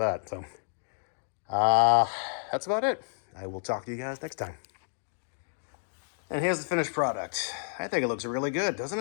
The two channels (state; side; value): silent; right; digital silence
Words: So, that's about it. I will talk to you guys next time. And here's the finished product. I think it looks really good, doesn't